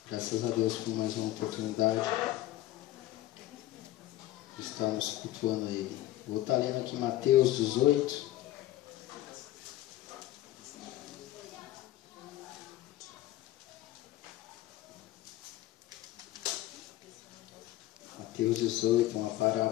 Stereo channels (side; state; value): right; quieter; 15.0 dB